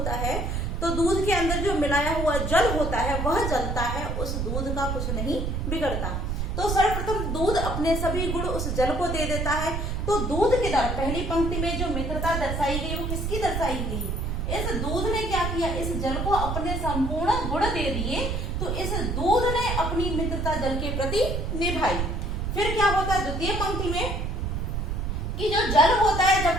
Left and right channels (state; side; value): noise; right; rumble, 1 dB below the sound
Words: है तो दूध के अंदर जो मिलाया हुआ जल होता है वह जलता है, उस दूध का कुछ नहीं बिगड़ता। तो सर्वप्रथम दूध अपने सभी गुण उस जल को दे देता है। तो दूध के द्वारा पहली पंक्ति में जो मित्रता दर्शाई गई वो किसकी दर्शाई गई, इस दूध ने क्या किया, इस जल को अपने संपूर्ण गुण दे दिए। तो इस दूध ने अपनी मित्रता जल के प्रति निभाई। फिर क्या होता है द्वितीय पंक्ति में कि जो जल होता है जब